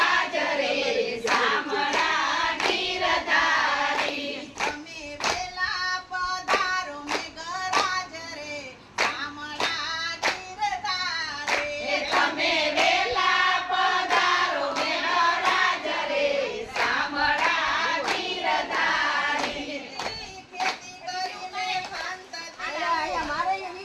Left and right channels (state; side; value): identical; both; correlation 1.00